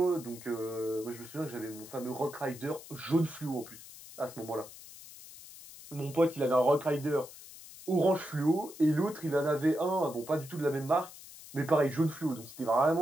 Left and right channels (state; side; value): noise; left; hiss, 17 dB below the sound